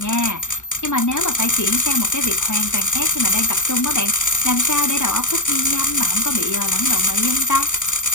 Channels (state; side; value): late; right; 0.86 ms